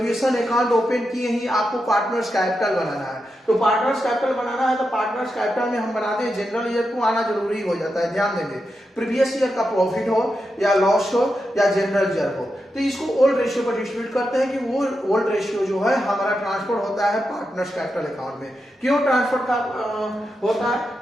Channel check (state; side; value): normal; both; correlation 0.87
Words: अकाउंट ओपन किए ही आपको पार्टनर्स कैपिटल बनाना है। तो पार्टनर्स कैपिटल बनाना है तो पार्टनर्स कैपिटल में हम बनाते हैं जनरल रिजर्व को आना जरूरी हो जाता है। ध्यान देंगे प्रीवियस ईयर का प्रॉफिट हो या लॉस हो या जनरल रिजर्व हो, तो इसको ओल्ड रेशियो पर डिस्ट्रीब्यूट करते हैं कि वो ओल्ड रेशियो जो है हमारा ट्रांसफर होता है पार्टनर्स कैपिटल अकाउंट में। क्यों ट्रांसफर का होता है,